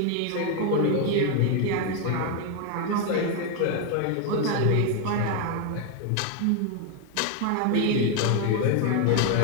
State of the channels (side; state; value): both; different; correlation 0.01